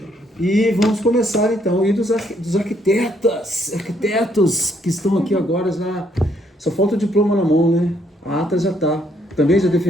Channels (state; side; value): normal; both; correlation 0.70